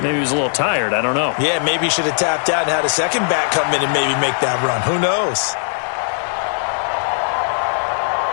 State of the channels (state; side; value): silent; right; digital silence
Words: maybe he was a little tired. I don't know. Yeah, maybe he should have tapped out and had a second back come in and maybe make that run. Who knows?